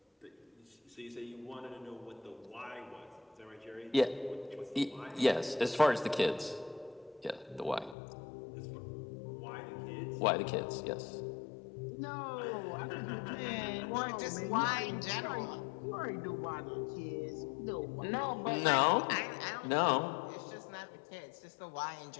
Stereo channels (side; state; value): right; drops out; at 8.0 s